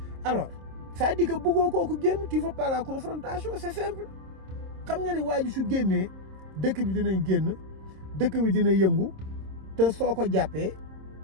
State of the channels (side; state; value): left; late; 26 ms